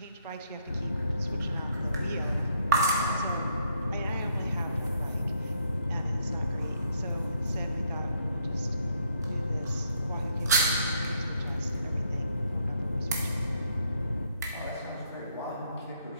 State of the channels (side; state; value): both; inverted; correlation -0.71